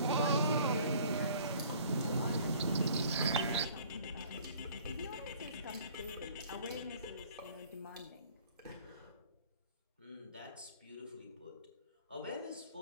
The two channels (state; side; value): inverted; both; correlation -0.52